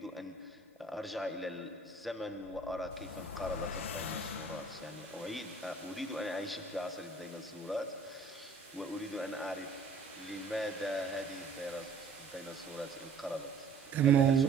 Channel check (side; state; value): left; quieter; 4.0 dB